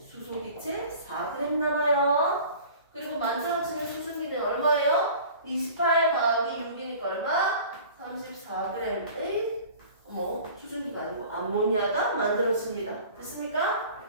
수소기체 4g 남아요. 그리고 만들어지는 수증기는 얼마예요? 28 더하기 6이니까 얼마? 34g의 수증기가 아니고 암모니아가 만들어집니다. 됐습니까?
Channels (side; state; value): both; inverted; correlation -0.44